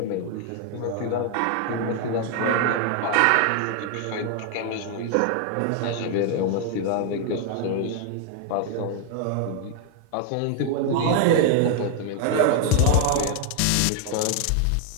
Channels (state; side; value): different; both; correlation 0.00